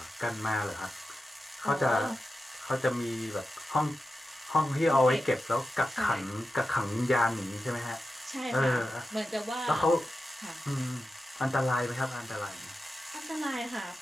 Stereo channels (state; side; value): normal; both; correlation 0.91